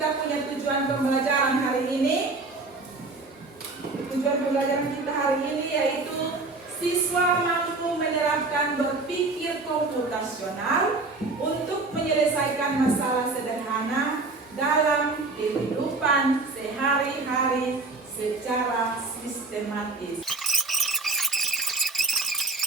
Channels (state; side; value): quieter; left; 3.5 dB